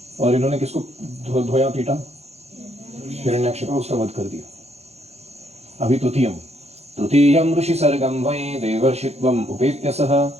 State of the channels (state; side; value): late; left; 0.31 ms